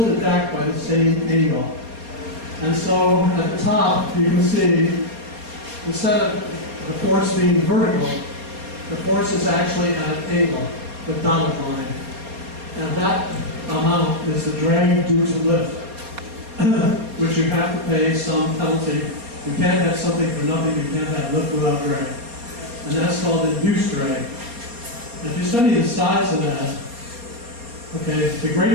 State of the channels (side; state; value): left; late; 4.2 ms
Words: back by the same angle. And so at the top, you can see, instead of the force being vertical, the force is actually at an angle, the dotted line. And that amount is the drag due to lift, which you have to pay some penalty. You can't have something for nothing, you can't have lift without drag. And that's called induced drag. And if you study the size of that, okay, the